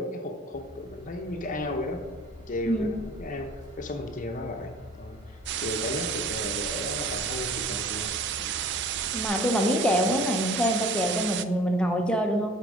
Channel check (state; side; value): normal; both; correlation 0.48